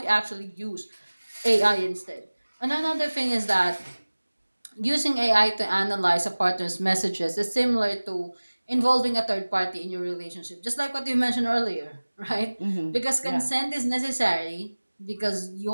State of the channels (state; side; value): inverted; both; correlation -1.00